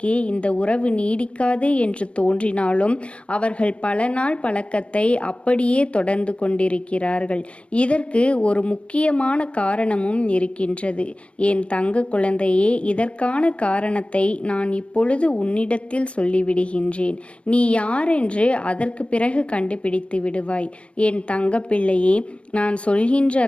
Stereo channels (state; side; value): late; right; 0.060 ms